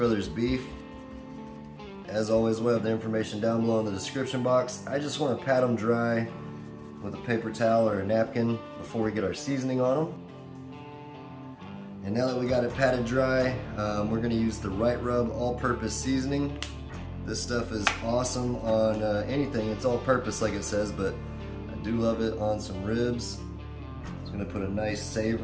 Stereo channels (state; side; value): identical; both; correlation 1.00